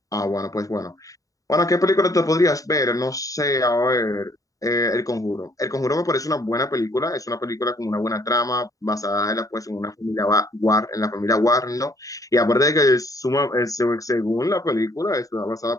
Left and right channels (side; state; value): right; late; 0.16 ms